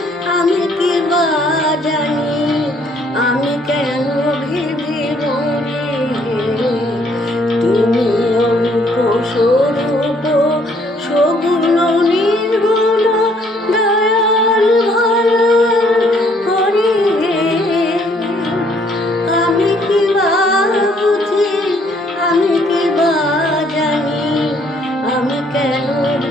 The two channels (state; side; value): normal; both; correlation 0.65